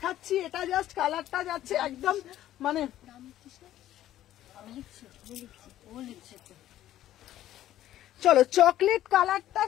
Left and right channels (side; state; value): right; quieter; 13.0 dB